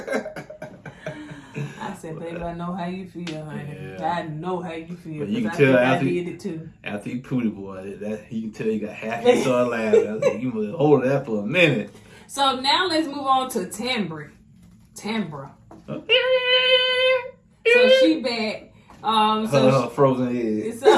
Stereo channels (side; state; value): both; identical; correlation 1.00